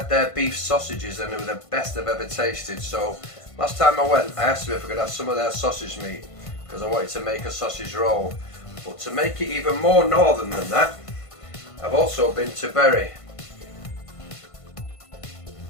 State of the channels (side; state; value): right; late; 1.5 ms